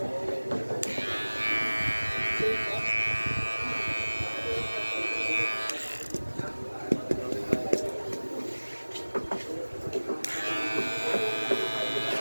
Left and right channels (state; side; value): inverted; both; correlation -1.00